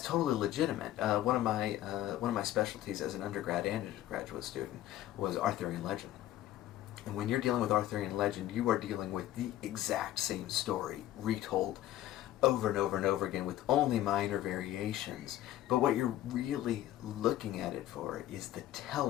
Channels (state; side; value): quieter; right; 13.8 dB